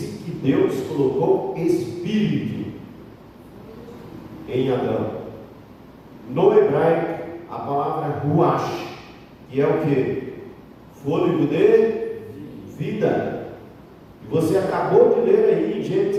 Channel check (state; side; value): identical; both; correlation 1.00